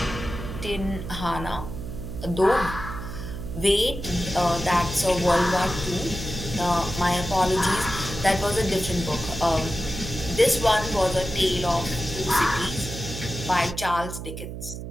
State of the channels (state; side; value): noise; right; hum, 8 dB below the sound